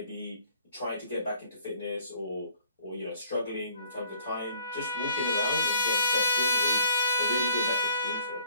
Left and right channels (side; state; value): both; inverted; correlation -0.58